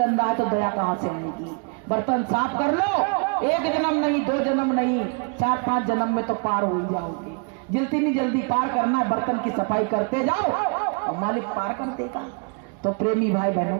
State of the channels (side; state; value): left; quieter; 37.3 dB